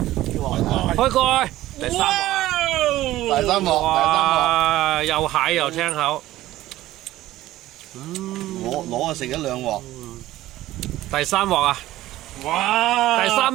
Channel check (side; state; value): left; quieter; 15.4 dB